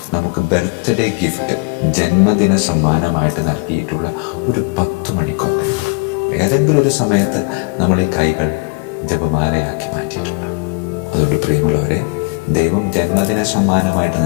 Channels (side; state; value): right; quieter; 31.7 dB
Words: നമുക്ക് ബർത്ത്ഡേ ഗിഫ്റ്റ്, ജന്മദിന സമ്മാനമായിട്ട് നൽകിയിട്ടുള്ള ഒരു 10 മണിക്കൊന്തയുണ്ട്. ഏതെങ്കിലും ഒരു സമയത്ത് നമ്മൾ ഈ കൈകൾ ജപമാലയാക്കി മാറ്റിയിട്ടുണ്ട്. അതുകൊണ്ട് പ്രിയമുള്ളവരെ, ദൈവം ജന്മദിന സമ്മാനമായിട്ട്